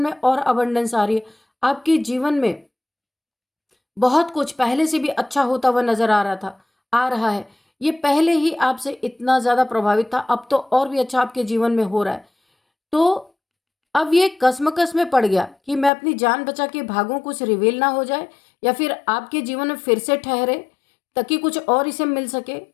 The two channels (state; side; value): drops out; right; at 15.9 s